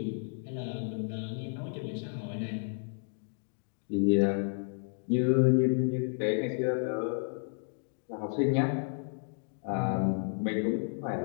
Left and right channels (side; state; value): right; silent; 56 dB below the other